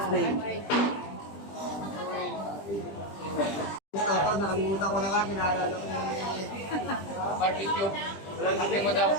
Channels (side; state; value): right; late; 20 ms